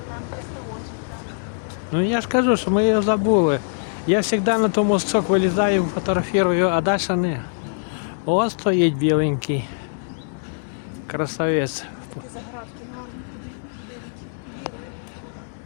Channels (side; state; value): right; silent; 63 dB below the other